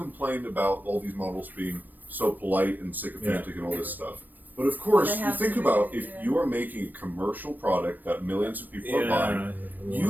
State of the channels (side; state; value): left; late; 0.089 ms